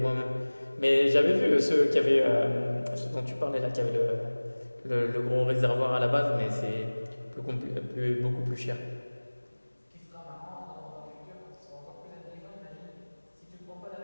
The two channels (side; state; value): both; inverted; correlation -1.00